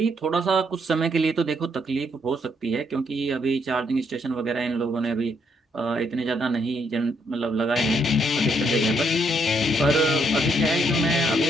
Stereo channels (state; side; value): normal; both; correlation 0.73